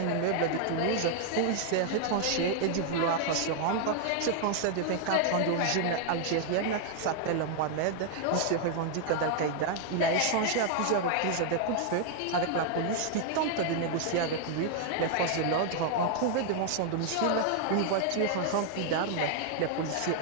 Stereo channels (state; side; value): different; both; correlation 0.00